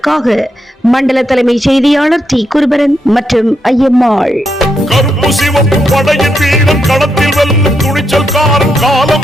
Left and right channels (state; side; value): normal; both; correlation 0.81